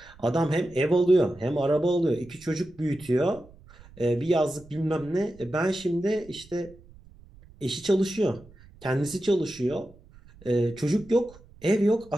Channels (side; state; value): right; noise; rumble, 24 dB below the sound